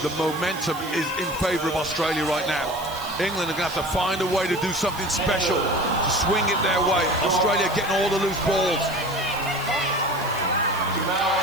momentum is in favour of Australia right now. England are going to have to find a way to do something special to swing it their way. Australia getting all the loose balls.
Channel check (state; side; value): noise; right; hiss, 16 dB below the sound